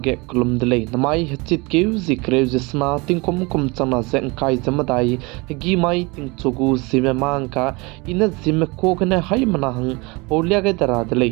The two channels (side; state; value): left; quieter; 26.4 dB